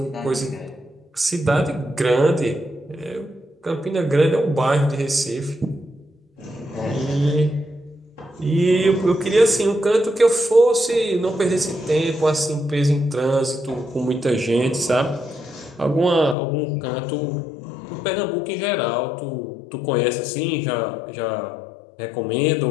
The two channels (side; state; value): right; drops out; at 16.4 s